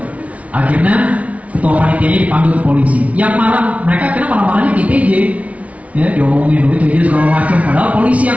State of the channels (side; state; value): left; late; 0.066 ms